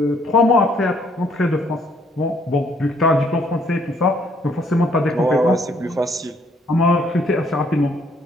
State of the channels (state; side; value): normal; both; correlation 0.66